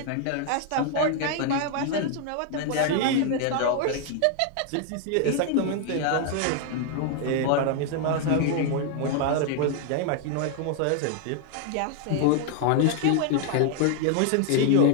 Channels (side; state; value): both; different; correlation 0.00